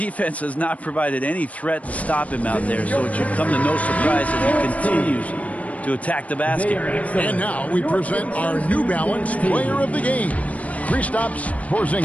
has not provided any threat to stop him out there, so it should come to no surprise that he continues to attack the basket. And now we present our New Balance player of the game, Kristaps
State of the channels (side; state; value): right; late; 0.068 ms